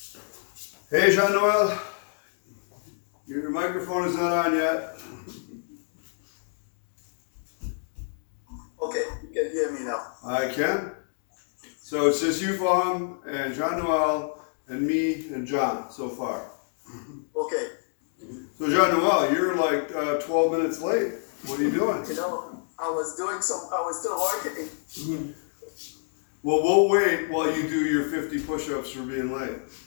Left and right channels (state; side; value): silent; right; digital silence